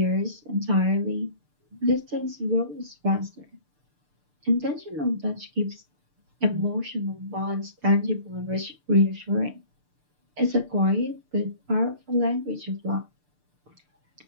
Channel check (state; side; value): late; left; 6.7 ms